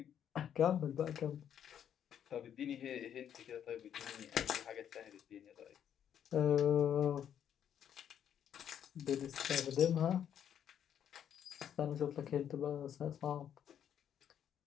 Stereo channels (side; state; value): right; quieter; 9.3 dB